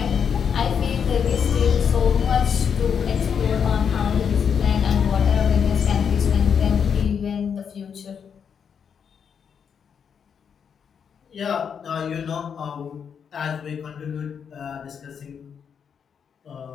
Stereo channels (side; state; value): right; quieter; 7.2 dB